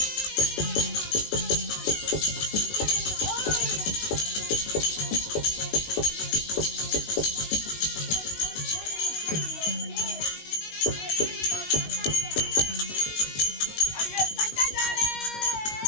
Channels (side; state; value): right; late; 19 ms